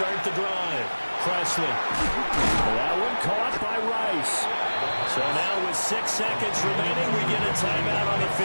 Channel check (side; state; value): both; inverted; correlation -1.00